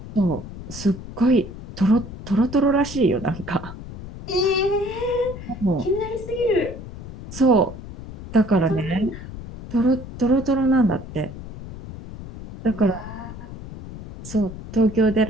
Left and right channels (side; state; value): left; noise; rumble, 12 dB below the sound